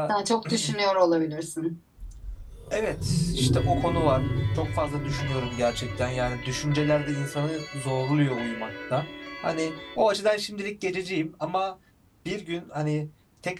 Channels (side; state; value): both; identical; correlation 1.00